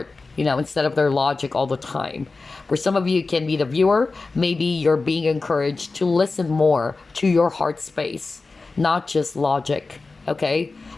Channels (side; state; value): right; quieter; 3.8 dB